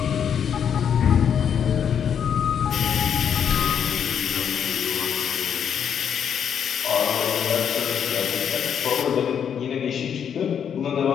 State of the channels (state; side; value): quieter; right; 8.1 dB